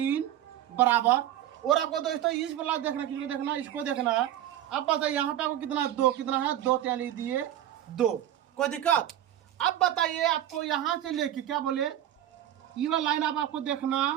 बराबर। और आपको दोस्तों इस वाला देखना, किसको देखना, इसको देखना है। अब बताइए यहाँ पे आपको कितना 2 कितना है 2। तो यहाँ लिख दिए 2। कोई दिक्कत। अब बताइए आपको यहाँ से लेके क्या बोले, ये वाला लाइन आपको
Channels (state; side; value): quieter; left; 12.0 dB